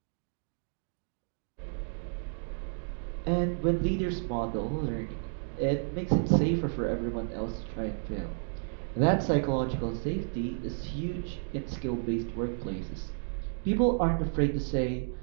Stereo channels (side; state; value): left; silent; digital silence